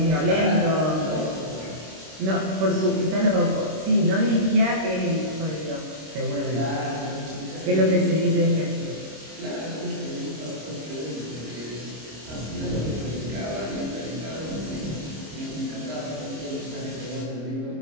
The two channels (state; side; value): late; left; 26 ms